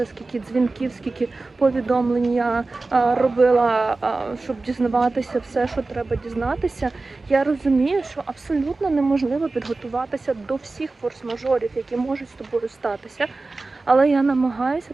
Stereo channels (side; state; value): left; quieter; 3.5 dB